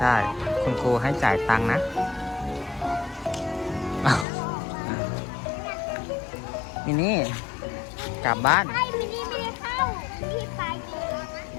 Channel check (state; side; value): drops out; right; at 4.2 s